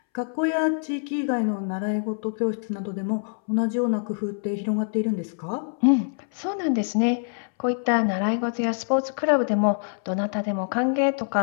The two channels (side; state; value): right; silent; 62 dB below the other